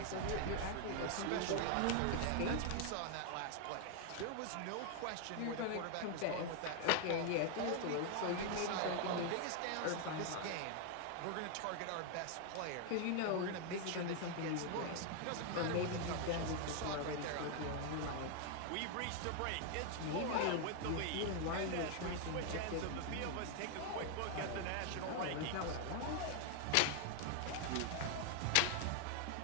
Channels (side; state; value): both; different; correlation 0.00